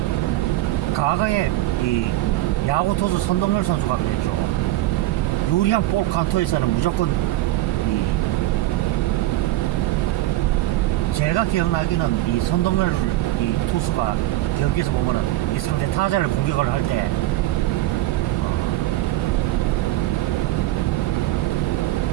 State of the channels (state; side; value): quieter; left; 16.2 dB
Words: 과거에 이 야구 투수 선동열 선수가 그랬죠. 유리한 볼 카운터에서는 무조건 제가 기억나기는 이 선동열 이 투수가 경기에서 보면은 이 상대 타자를 공격을 할 때